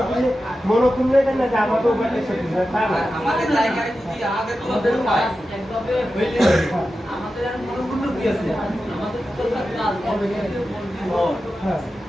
মনোকুণ্ড না যে আমাদের আমাদের জায়গায় যদি আমাদের মনোকুণ্ড কি আছে,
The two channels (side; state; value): both; normal; correlation 0.92